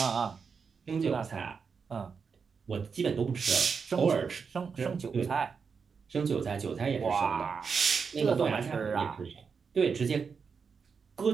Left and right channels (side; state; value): left; quieter; 5.7 dB